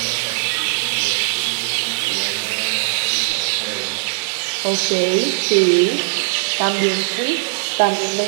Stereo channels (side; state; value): left; silent; 66 dB below the other